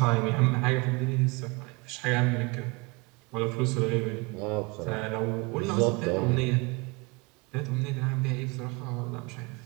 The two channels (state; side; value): quieter; left; 27.0 dB